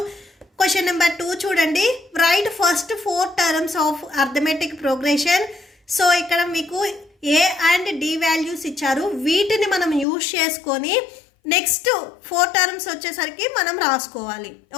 క్వశ్చన్ నెంబర్ 2 చూడండి. Right first 4 terms of arithmetic progression. So ఇక్కడ మీకు ఏ అండ్ డి వాల్యూస్ ఇచ్చారు, వీటిని మనం యూజ్ చేసుకొని నెక్స్ట్ 4 టర్మ్స్ వచ్చేసరికి మనం రాసుకోవాలి.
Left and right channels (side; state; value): right; drops out; at 10.1 s